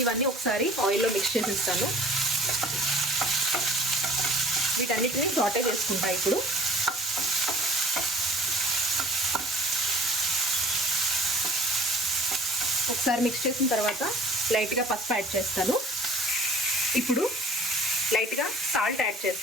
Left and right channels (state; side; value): normal; both; correlation 0.49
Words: ఇవన్నీ ఒకసారి ఆయిల్లో మిక్స్ చేసేస్తాను. వీటన్నిటిని సాటే చేసుకుంటా. ఇప్పుడు ఒకసారి మిక్స్ చేసిన తర్వాత లైట్గా పసుపు యాడ్ చేస్తాను. ఇప్పుడు లైట్గా సాల్ట్ యాడ్